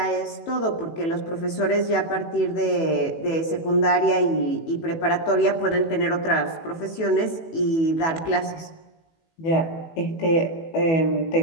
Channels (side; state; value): right; late; 18 ms